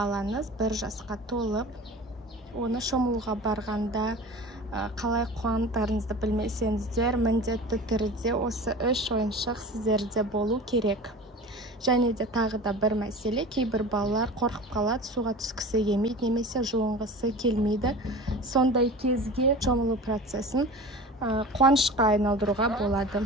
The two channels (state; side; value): normal; both; correlation 0.36